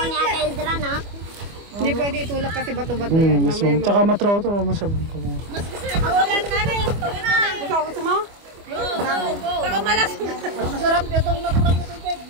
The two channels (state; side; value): late; left; 25 ms